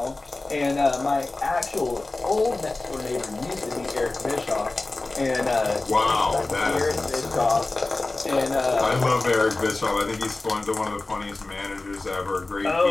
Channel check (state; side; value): quieter; right; 3.1 dB